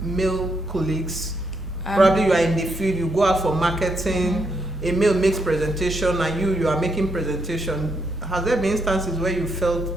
male colleagues? Probably you are in the field, you go out for marketing, a male makes presentation and you are making presentation. Has there been instances where you felt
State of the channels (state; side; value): normal; both; correlation 0.77